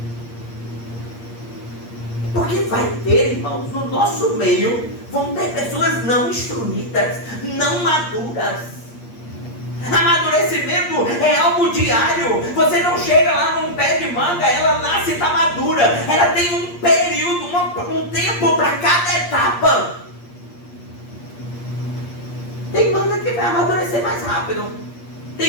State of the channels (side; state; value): right; late; 8.5 ms